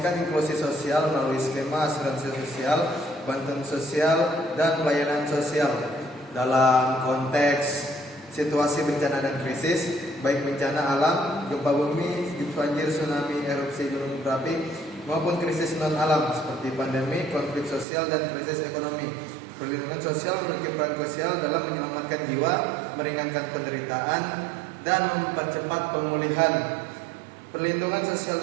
inklusi sosial melalui skema asuransi sosial, bantuan sosial, dan pelayanan sosial dalam konteks situasi bencana dan krisis, baik bencana alam, gempa bumi, banjir, tsunami, erupsi gunung berapi, maupun krisis non-alam seperti pandemi, konflik sosial, dan krisis ekonomi. Perlindungan sosial memiliki peran krusial dalam menyelamatkan jiwa, meringankan penderitaan, dan mempercepat pemulihan. Perlindungan sosial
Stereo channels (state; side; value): drops out; left; at 17.9 s